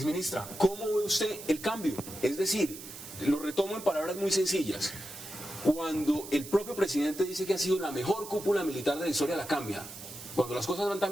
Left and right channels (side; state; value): right; noise; hiss, 13 dB below the sound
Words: ¿cómo ve usted el cambio? Es decir, lo retomo en palabras muy sencillas. Cuando el propio presidente dice que ha sido la mejor cúpula militar de la historia, la cambia. Cuando las cosas van